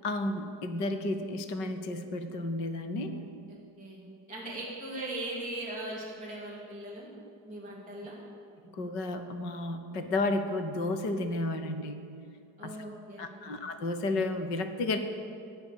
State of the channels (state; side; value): late; right; 4.7 ms